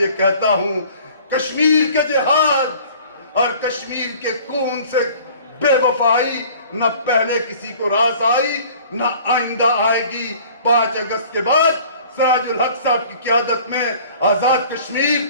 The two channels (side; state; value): both; inverted; correlation -0.50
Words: کہتا ہوں، کشمیر کے جہاد اور کشمیر کے خون سے بے وفائی نہ پہلے کسی کو راس آئی نہ آئندہ آئے گی۔ 5 اگست کے بعد سراج الحق صاحب کی قیادت میں آزاد کشمیر